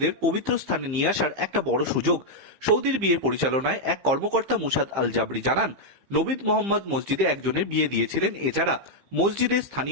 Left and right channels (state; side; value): late; left; 15 ms